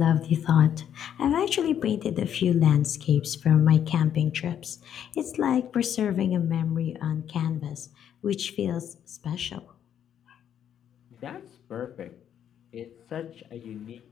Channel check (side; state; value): right; quieter; 9.5 dB